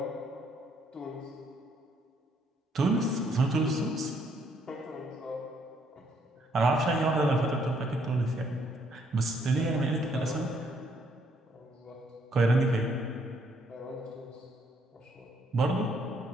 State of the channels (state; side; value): normal; both; correlation 0.69